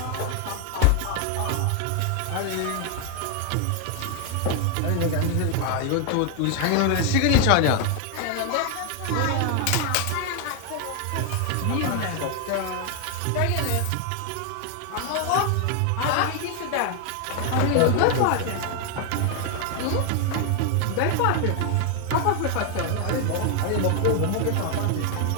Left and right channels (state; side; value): different; both; correlation 0.00